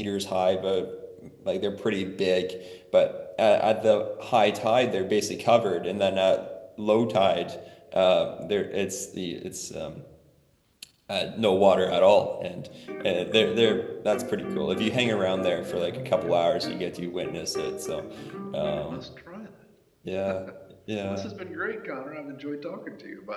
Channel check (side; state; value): both; identical; correlation 1.00